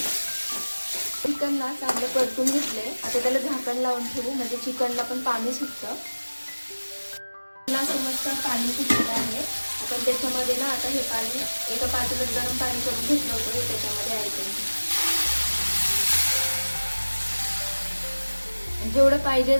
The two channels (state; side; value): inverted; both; correlation -1.00